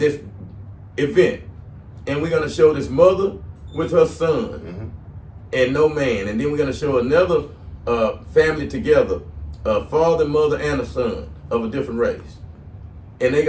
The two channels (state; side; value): identical; both; correlation 1.00